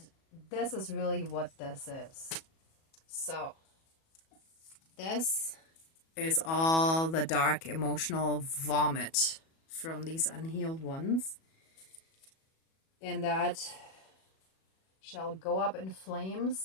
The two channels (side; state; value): right; late; 37 ms